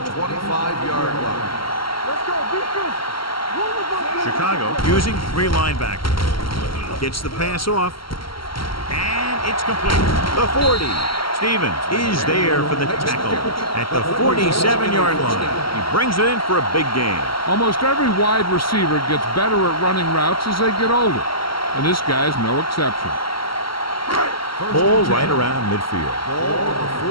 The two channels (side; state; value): right; late; 0.74 ms